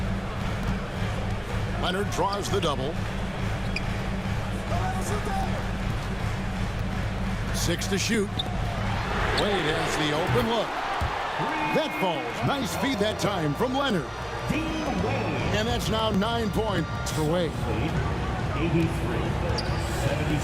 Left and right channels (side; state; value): both; identical; correlation 1.00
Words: Leonard draws the double. 6 to shoot. Wade has the open look. That falls. Nice feed that time from Leonard. And that's now 9 points for Wade.